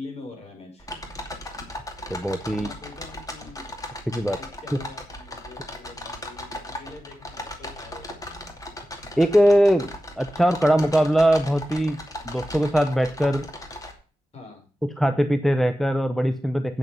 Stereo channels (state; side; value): normal; both; correlation 0.93